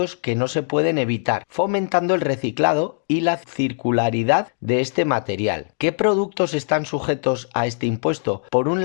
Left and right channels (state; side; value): silent; right; digital silence